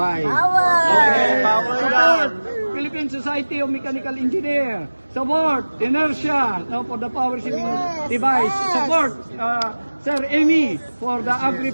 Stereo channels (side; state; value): both; inverted; correlation -1.00